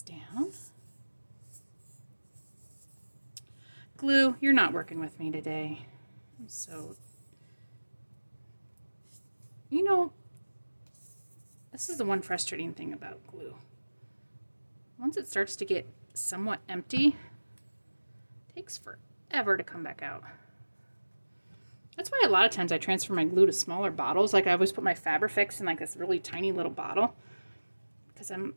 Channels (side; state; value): both; inverted; correlation -1.00